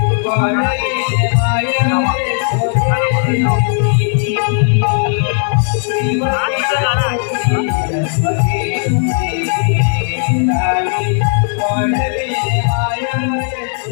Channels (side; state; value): right; silent; digital silence